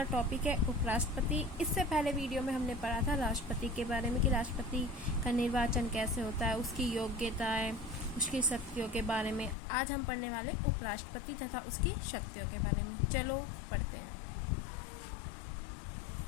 टॉपिक है उपराष्ट्रपति। इससे पहले वीडियो में हमने पढ़ा था राष्ट्रपति के बारे में कि राष्ट्रपति का निर्वाचन कैसे होता है, उसकी योग्यताएं, उसकी शक्तियों के बारे में। आज हम पढ़ने वाले उपराष्ट्रपति तथा उसकी शक्तियों के बारे में। चलो पढ़ते हैं।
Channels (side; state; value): right; drops out; at 9.6 s